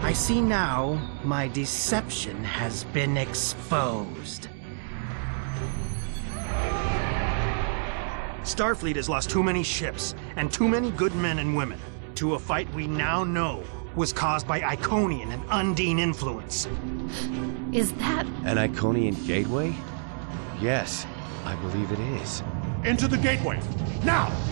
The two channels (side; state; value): left; silent; digital silence